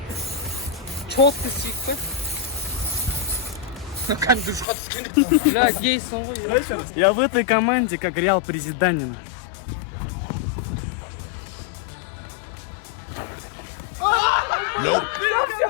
Четко сүйікті. Как душқа түскенде. Я гейсің ғой. Я в этой команде как Реал Президанина.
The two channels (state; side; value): drops out; right; at 4.7 s